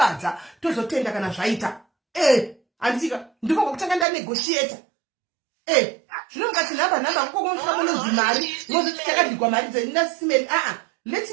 tozotenda kana zvaita handitika ndiko kwakutanga ndanegotiata zvino mukati nhamba kukokonosvika munonzi mari mozoti takadhigwa mari dzeninasimeli let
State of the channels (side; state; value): left; drops out; at 4.0 s